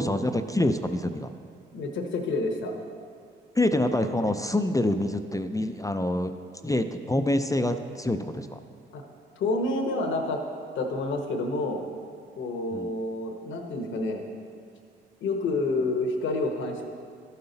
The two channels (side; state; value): both; normal; correlation 0.66